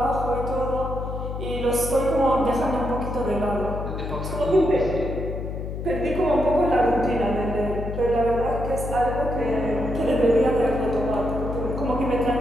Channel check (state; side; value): noise; left; hum, 6 dB below the sound